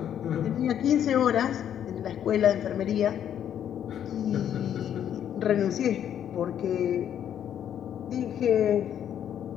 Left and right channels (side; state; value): right; quieter; 9.7 dB